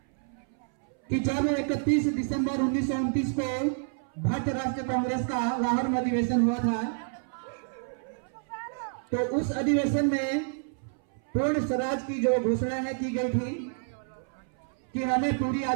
कि जब 31 दिसंबर 1929 को भारतीय राष्ट्रीय कांग्रेस का लाहौर में अधिवेशन हुआ था, तो उस अधिवेशन में पूर्ण स्वराज की जो घोषणा है की गई थी कि हमें पूरी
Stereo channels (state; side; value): silent; left; 59 dB below the other